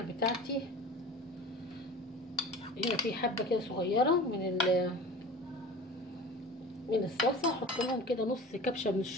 بتاعتي هنا في حبه كده صغيره من الصلصه، احط لهم كده نص كبشه من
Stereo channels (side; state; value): both; normal; correlation 0.38